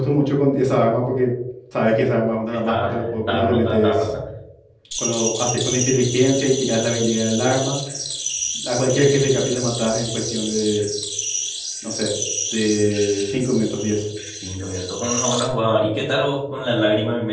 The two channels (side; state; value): both; identical; correlation 1.00